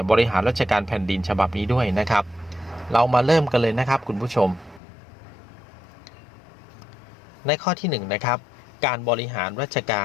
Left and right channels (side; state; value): right; drops out; at 4.8 s